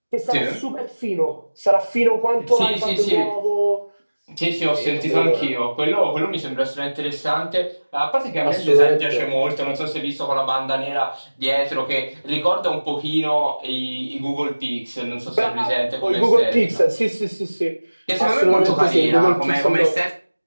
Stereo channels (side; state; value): both; inverted; correlation -1.00